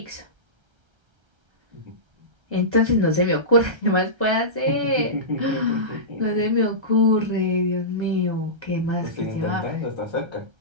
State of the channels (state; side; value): late; left; 1.3 ms